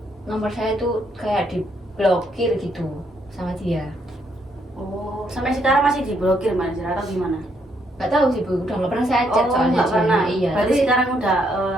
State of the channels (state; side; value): normal; both; correlation 0.73